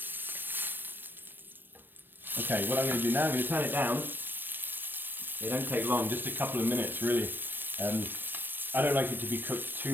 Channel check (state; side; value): late; left; 0.094 ms